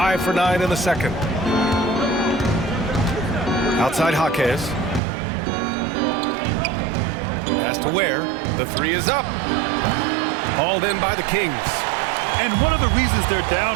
for 9 in the second. Outside Jaquez. Pass to Ware. The three is up. Hauled in by the Kings. And one of the reasons they're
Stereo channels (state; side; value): drops out; left; at 5.0 s